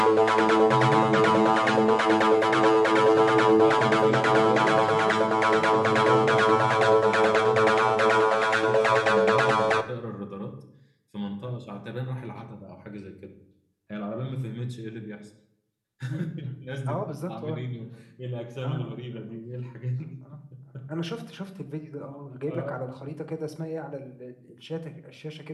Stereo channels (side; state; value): both; identical; correlation 1.00